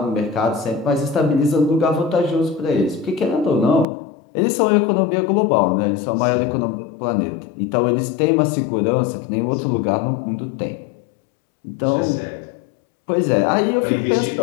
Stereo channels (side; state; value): right; drops out; at 3.9 s